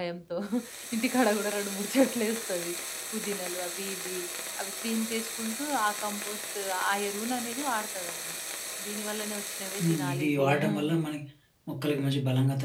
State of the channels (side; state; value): both; identical; correlation 1.00